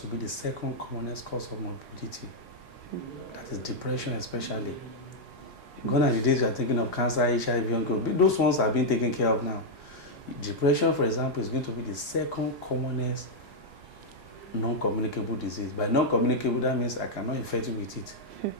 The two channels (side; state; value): both; normal; correlation -0.02